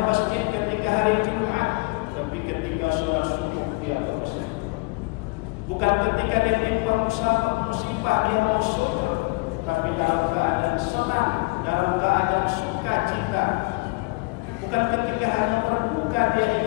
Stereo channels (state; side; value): quieter; right; 27.4 dB